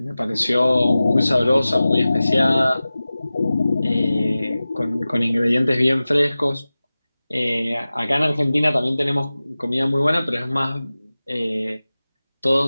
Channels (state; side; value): inverted; both; correlation -0.97